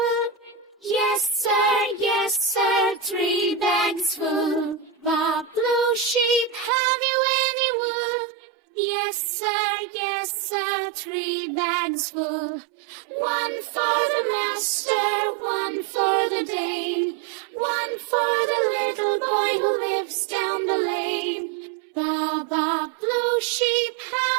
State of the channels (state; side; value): drops out; left; at 6.7 s